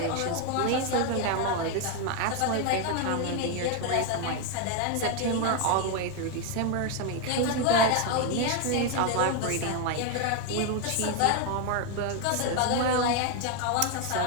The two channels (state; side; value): different; both; correlation 0.01